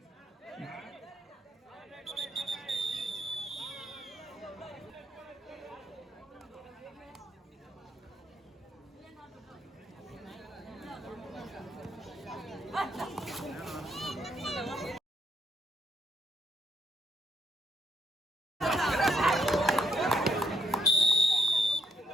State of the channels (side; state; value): both; normal; correlation 0.74